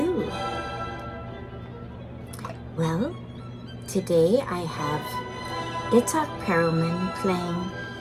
Well, today I have Perlman playing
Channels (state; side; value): identical; both; correlation 1.00